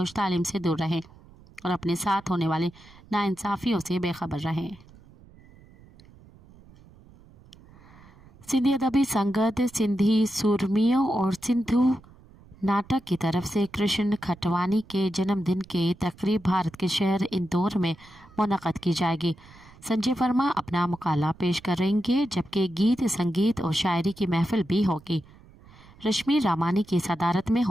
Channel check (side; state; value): right; noise; rumble, 24 dB below the sound